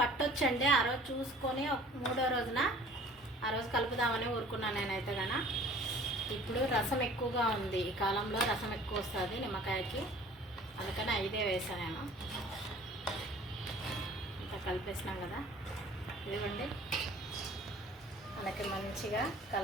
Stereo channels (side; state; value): both; normal; correlation 0.49